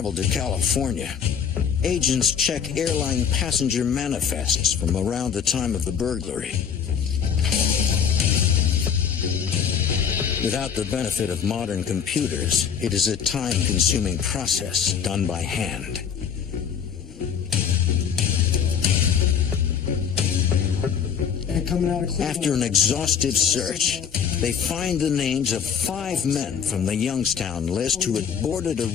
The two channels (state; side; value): quieter; right; 7.5 dB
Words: to California, agents check airline passenger manifests from around the time of the burglary. Without the benefit of modern computers, it is a time-consuming process done by hand. After an exhaustive search, they find the names of 5 men from the Youngstown list who had boarded a